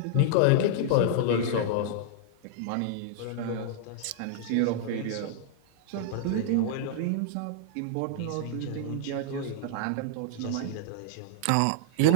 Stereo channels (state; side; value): different; both; correlation -0.01